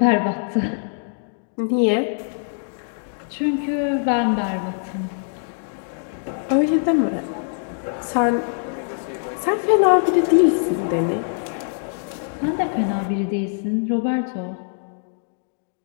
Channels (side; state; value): right; silent; 64 dB below the other